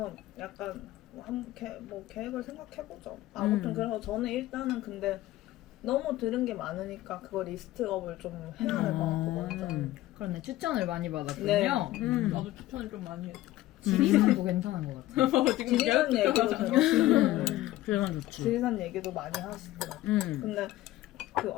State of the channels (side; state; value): right; quieter; 15.8 dB